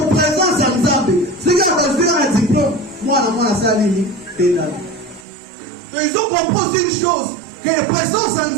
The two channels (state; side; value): drops out; left; at 5.2 s